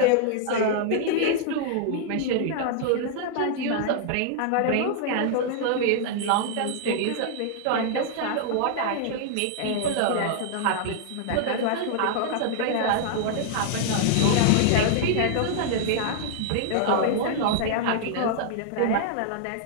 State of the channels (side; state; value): both; different; correlation -0.01